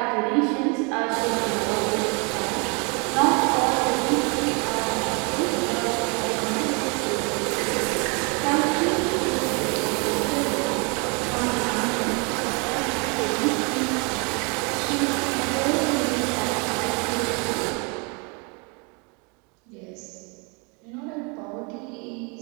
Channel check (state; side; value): quieter; left; 32.7 dB